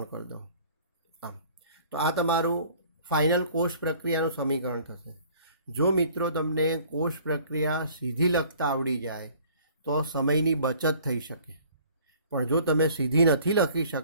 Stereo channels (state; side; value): inverted; both; correlation -0.53